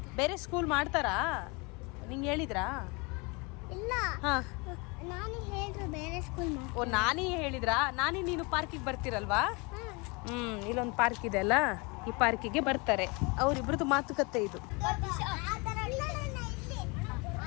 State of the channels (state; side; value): quieter; right; 28.8 dB